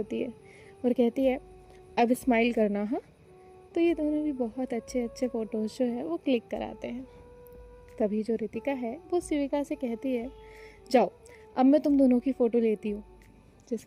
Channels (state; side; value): identical; both; correlation 1.00